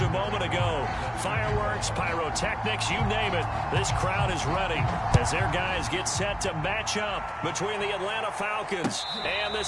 moment ago. Fireworks, pyrotechnics, you name it. This crowd is ready as their guys get set to match up between the Atlanta Falcons and the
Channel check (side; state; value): both; identical; correlation 1.00